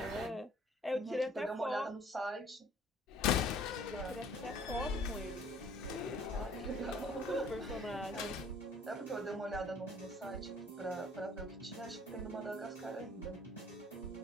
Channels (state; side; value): normal; both; correlation 0.55